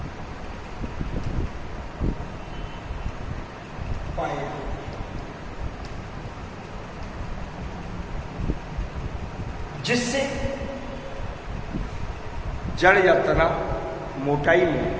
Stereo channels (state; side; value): identical; both; correlation 1.00